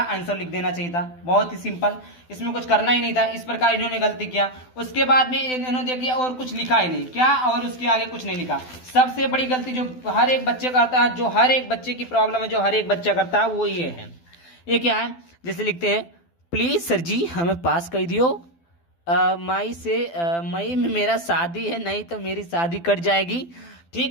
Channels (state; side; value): late; right; 12 ms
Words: आंसर लिख देना चाहिए था, बहुत ही सिंपल, इसमें कुछ करना ही नहीं था। इस प्रकार इन्होंने गलती किया। उसके बाद में इन्होंने देखिए और कुछ लिखा ही नहीं, क्या, और उसके आगे कुछ नहीं लिखा। सबसे बड़ी गलती जो हर एक बच्चे करता है, जो हर एक बच्चे की प्रॉब्लम है, जो हर एक बच्चा करता है, वो ये है। ये क्या है, जैसे लिखते हैं प्लीज सर जी हमें पास कर दियो, मई में मेरा शादी है, नहीं तो मेरी शादी कट जाएगी।